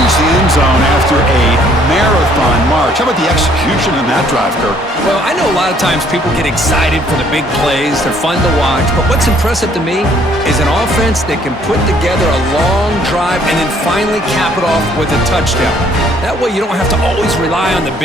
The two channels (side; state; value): both; normal; correlation 0.62